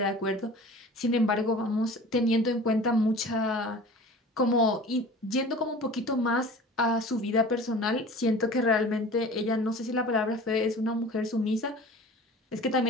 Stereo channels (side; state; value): both; normal; correlation 0.41